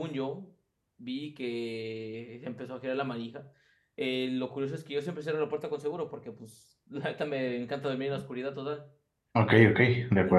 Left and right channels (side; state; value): both; identical; correlation 1.00